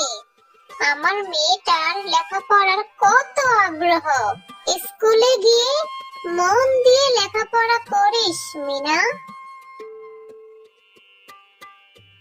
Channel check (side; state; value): both; identical; correlation 1.00